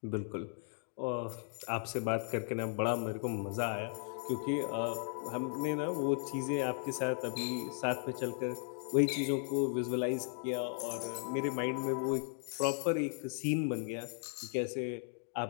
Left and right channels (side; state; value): right; silent; 53 dB below the other